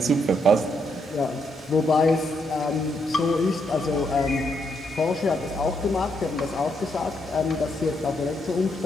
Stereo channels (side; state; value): both; normal; correlation 0.77